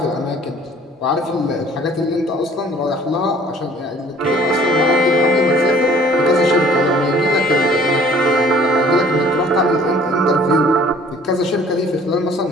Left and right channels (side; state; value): both; normal; correlation 0.53